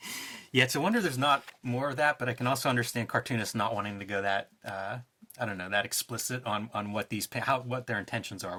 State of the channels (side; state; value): both; identical; correlation 1.00